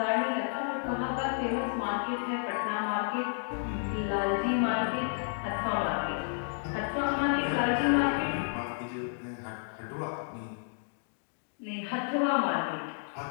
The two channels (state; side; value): silent; right; digital silence